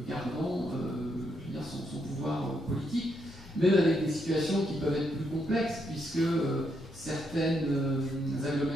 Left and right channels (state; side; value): normal; both; correlation 0.78